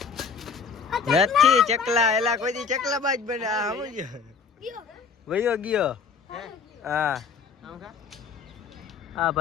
નથી ચકલા એલા કોઈ દી ચકલા બાજ બને આ સમજો વયો ગયો હા હા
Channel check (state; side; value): quieter; right; 5.5 dB